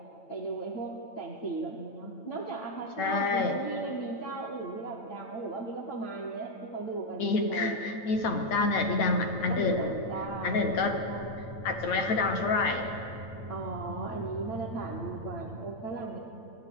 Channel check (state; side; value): late; right; 8.9 ms